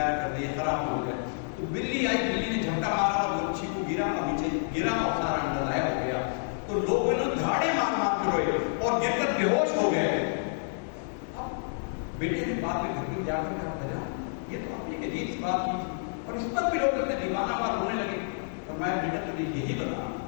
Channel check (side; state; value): right; silent; digital silence